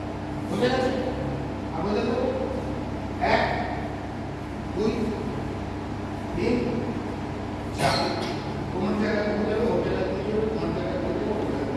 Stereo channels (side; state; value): both; identical; correlation 1.00